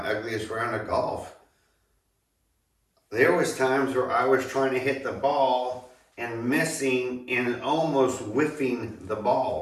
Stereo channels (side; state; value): both; identical; correlation 1.00